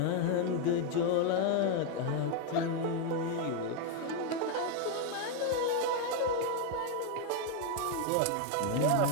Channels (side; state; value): both; different; correlation 0.01